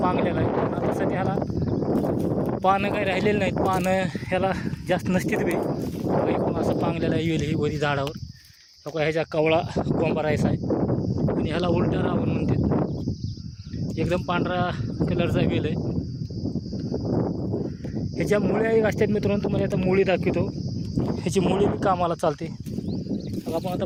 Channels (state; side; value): identical; both; correlation 1.00